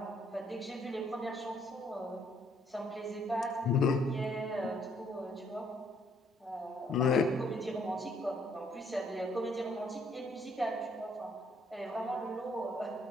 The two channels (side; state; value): both; normal; correlation 0.67